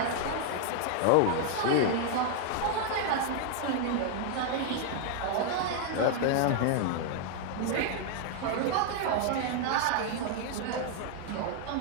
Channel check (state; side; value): different; both; correlation 0.00